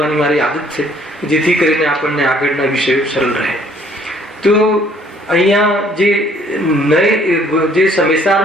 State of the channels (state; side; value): normal; both; correlation 0.61